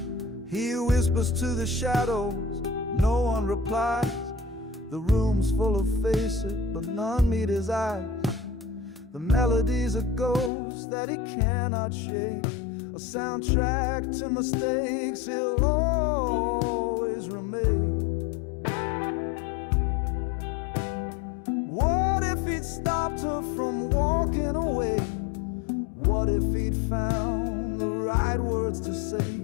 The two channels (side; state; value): right; drops out; at 10.5 s